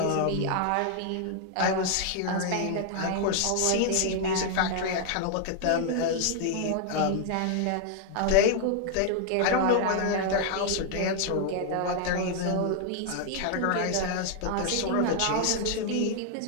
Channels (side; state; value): both; different; correlation 0.00